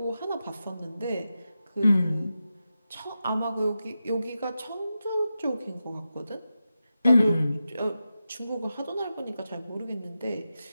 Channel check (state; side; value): inverted; both; correlation -0.91